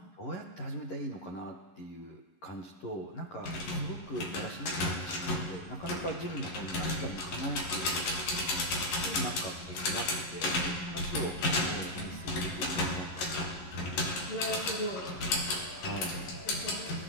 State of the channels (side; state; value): right; late; 11 ms